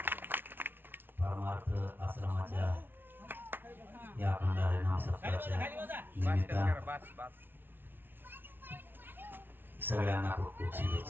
परमार्थ आश्रमाच्या या अखंड हरिनाम सप्ताहाच्या निमित्तानं सगळ्यांना खूप खूप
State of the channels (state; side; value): late; left; 0.10 ms